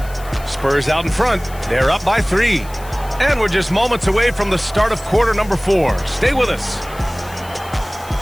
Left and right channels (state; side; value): noise; left; hiss, 20 dB below the sound